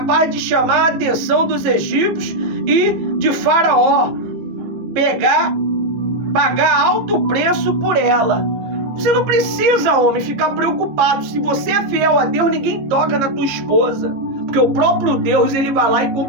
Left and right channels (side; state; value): left; late; 14 ms